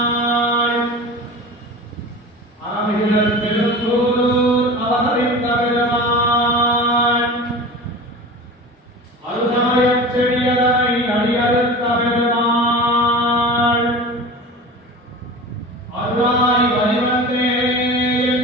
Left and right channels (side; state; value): both; normal; correlation 0.34